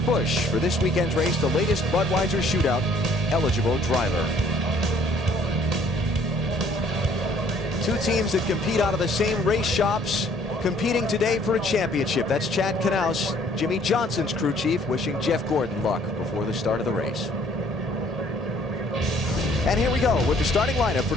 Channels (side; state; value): both; normal; correlation 0.59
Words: Busch for this weekend's race, the latest Budweiser Shootout eligible driver. Two teams that compete out of the same race shops, competing today for a championship. That's Chad Knaus, Jimmy Johnson's crew chief, wishing Jeff Gordon luck before the start of the race. And here we go with the starting lineup for